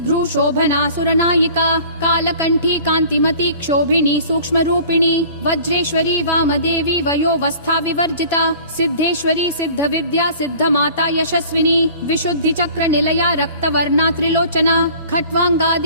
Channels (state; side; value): inverted; both; correlation -0.47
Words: शोभना सुरनायिका कालकंठी कांतिमती क्षोभिनी सूक्ष्म रूपिणी वज्रेश्वरी वामदेवी वयोवस्था विवर्जिता सिद्धेश्वरी सिद्ध विद्या सिद्ध माता यशस्विनी विशुद्धि चक्र निलया रक्तवर्णा त्रिलोचना